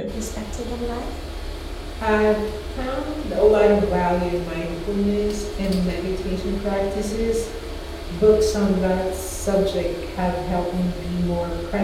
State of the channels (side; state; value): both; identical; correlation 1.00